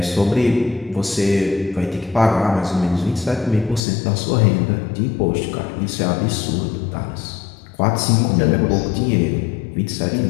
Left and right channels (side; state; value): right; drops out; at 3.8 s